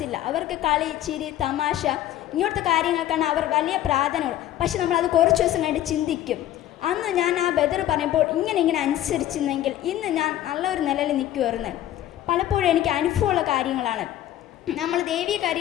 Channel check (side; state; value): right; quieter; 12.8 dB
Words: അവർക്ക് കളി, ചിരി, തമാശ ഇങ്ങനത്തെ കാര്യങ്ങൾക്കാണ് അവർ വലിയ പ്രാധാന്യമുള്ളത്. പക്ഷെ നമ്മളത് കുറച്ച് ദിവസം കഴിഞ്ഞിട്ട് ചിന്തിക്കും, അന്ന് ഞാൻ ആ ബദർ പറയുമ്പോൾ ഇങ്ങനെ അനുസരിച്ചിരുന്നെങ്കിൽ ഇന്ന് ഞാൻ നല്ലൊരു നിലയിൽ നിൽക്കുമായിരുന്നു. പലപ്പോഴും എനിക്ക് അനുഭവമുള്ള കാര്യങ്ങളാണ്. നമ്മൾ ദൈവീയ